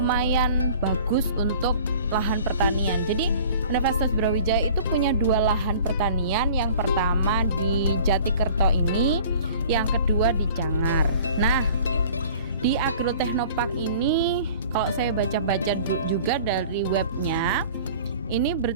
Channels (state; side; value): inverted; both; correlation -0.46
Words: bagus untuk lahan pertanian. Jadi Universitas Brawijaya itu punya dua lahan pertanian. Yang pertama di Jatikerto ini, yang kedua di Cangar. Nah, di Agroteknopark ini kalau saya baca-baca juga dari webnya, ini